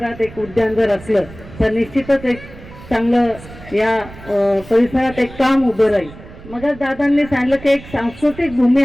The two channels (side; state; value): right; noise; rumble, 18 dB below the sound